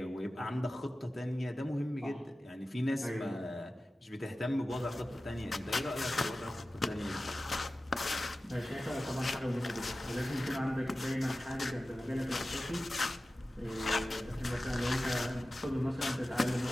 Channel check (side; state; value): both; normal; correlation 0.95